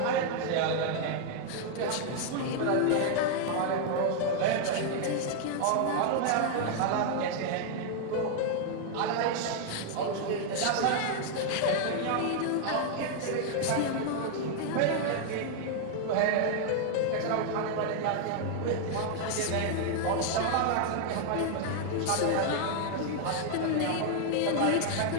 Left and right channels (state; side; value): different; both; correlation 0.00